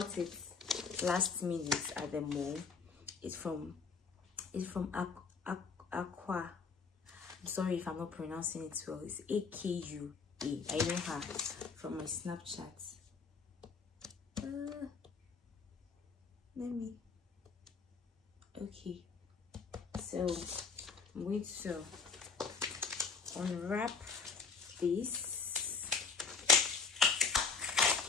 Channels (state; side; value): quieter; right; 5.2 dB